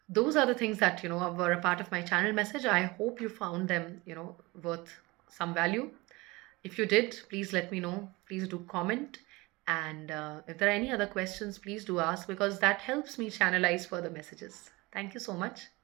Those are the things that, were a part of my channel message. I hope you found them, worth some value. If you did, please let me know. Please do comment. And if there are any other questions, please do ask, because that helps me channelize further messages. Thank you so much.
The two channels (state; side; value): quieter; left; 23.0 dB